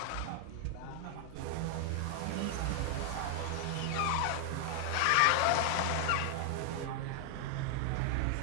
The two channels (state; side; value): different; both; correlation 0.00